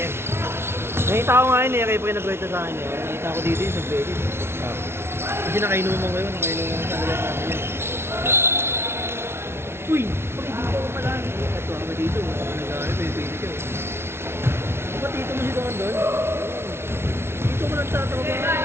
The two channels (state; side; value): late; left; 0.12 ms